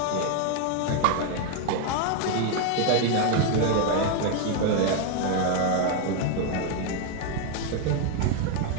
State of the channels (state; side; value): different; both; correlation 0.01